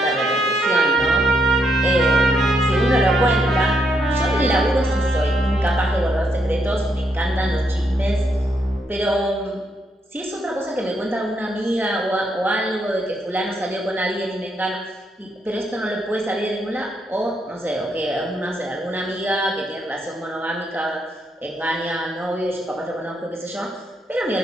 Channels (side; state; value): both; normal; correlation 0.77